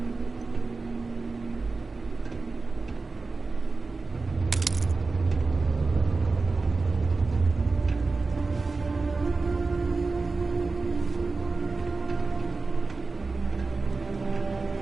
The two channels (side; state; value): left; quieter; 3.9 dB